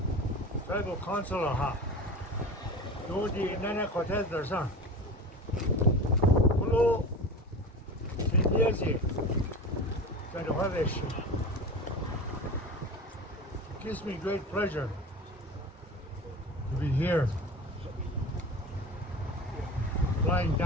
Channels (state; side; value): normal; both; correlation 0.32